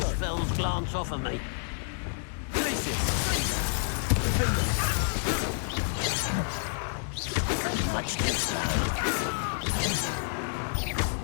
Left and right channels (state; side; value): silent; right; digital silence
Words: spells glance off of me. Much too slow.